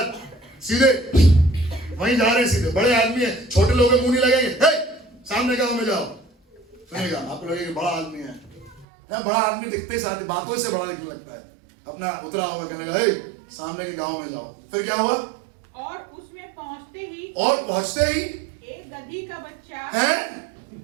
सीधे वहीं जा रहे हैं, सीधे। बड़े आदमी है, छोटे लोगों के मुंह नहीं लगेंगे, हे सामने गांव में जाओ। सुनिएगा, आपको लगेगा बड़ा आदमी है ना, बड़ा आदमी दिखते ही साथ बातों से बड़ा दिखने लगता है, अपना उतरा होगा, कहने लगा हे सामने के गांव में जाओ। फिर क्या हुआ? और उसमें पहुंचते ही एक गधी का बच्चा है।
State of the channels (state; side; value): drops out; left; at 8.8 s